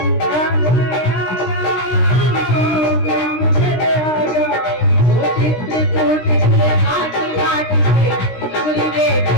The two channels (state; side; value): late; right; 16 ms